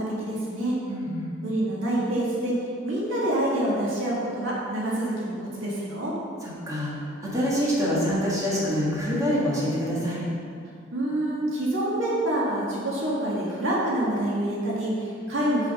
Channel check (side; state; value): both; normal; correlation 0.51